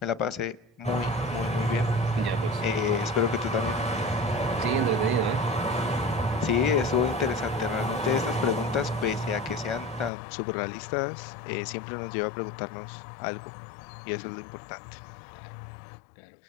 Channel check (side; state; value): right; drops out; at 10.1 s